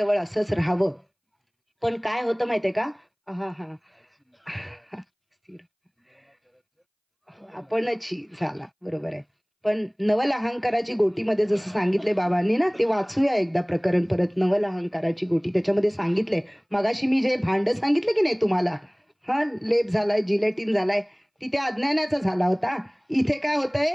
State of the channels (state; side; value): identical; both; correlation 1.00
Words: असंच राहावं. पण काय होतं माहितीये का? आपणच झाला, बरोबर आहे. पण नवल अहंकाराची गोटीमध्ये जसं सांगितलंय बाबांनी ना, ते वाचूया एकदा प्रकरण परत. नवल अहंकाराची गोटी, त्याच्यामध्ये सांगितलंय, मगाशी मी जे भांड सांगितलं की नाही तुम्हाला, हा लेप झालाय, जिलेटिन झालाय, तिथे अज्ञानाचा झाला होता. इथे काय